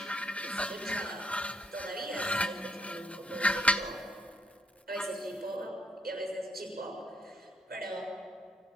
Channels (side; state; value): both; normal; correlation 0.72